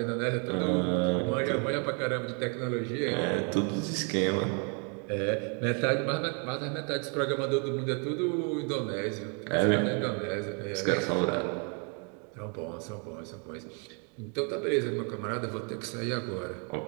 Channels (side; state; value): left; quieter; 37.6 dB